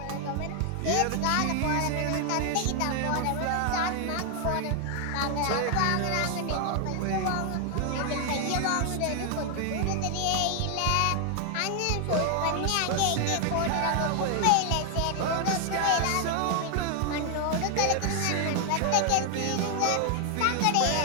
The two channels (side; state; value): both; different; correlation 0.00